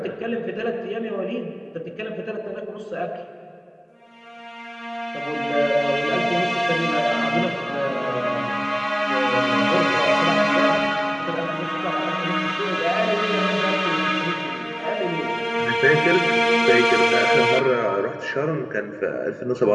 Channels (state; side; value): identical; both; correlation 1.00